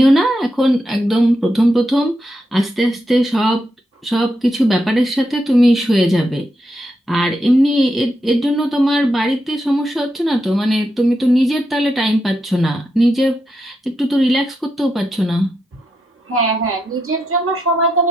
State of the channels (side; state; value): both; normal; correlation 0.84